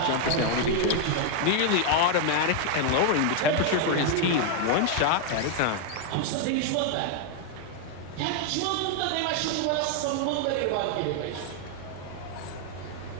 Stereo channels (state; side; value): different; both; correlation 0.00